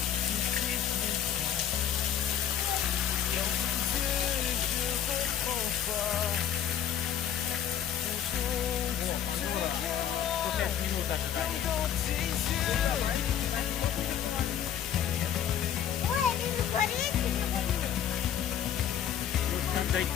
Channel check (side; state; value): right; quieter; 9.6 dB